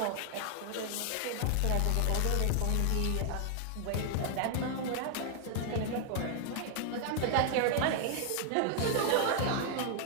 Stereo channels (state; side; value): different; both; correlation 0.00